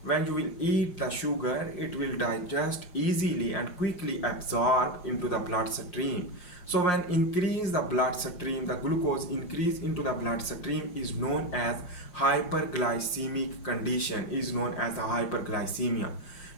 When you will eat the sugar, it will digest easily and quickly absorb into the bloodstream. So when increase the bloodstream, the glucose increase into the bloodstream is known as hyperglycemic condition, is known as the hyperglycemia.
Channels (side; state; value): right; late; 5.6 ms